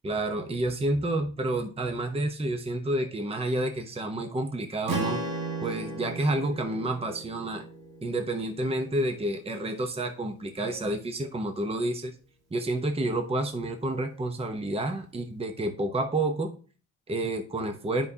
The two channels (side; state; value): both; normal; correlation 0.54